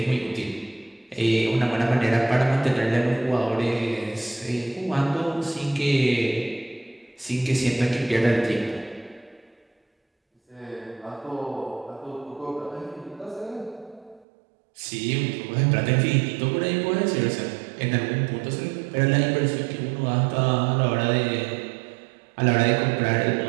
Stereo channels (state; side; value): drops out; left; at 14.2 s